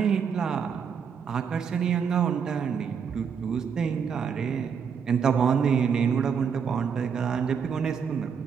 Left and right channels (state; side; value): quieter; left; 6.8 dB